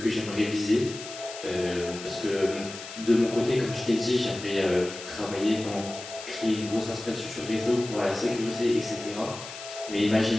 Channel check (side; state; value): left; noise; hiss, 12 dB below the sound